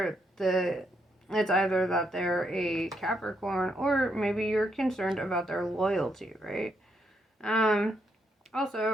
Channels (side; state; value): both; normal; correlation 0.77